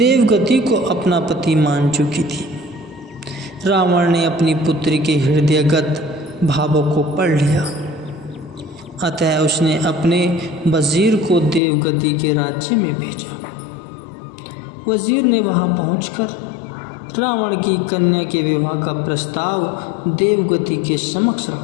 को अपना पति मान चुकी थी। रावण ने अपनी पुत्री के हृदयगत भावों को पढ़ लिया, अतः उसने अपने वजीर को देवगति के राज्य में भेजा। वजीर ने वहां पहुंचकर रावण की कन्या के विवाह का प्रस्ताव देवगति के समक्ष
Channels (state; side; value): drops out; right; at 11.6 s